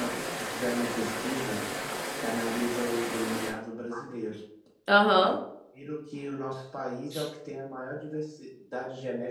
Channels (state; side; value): identical; both; correlation 1.00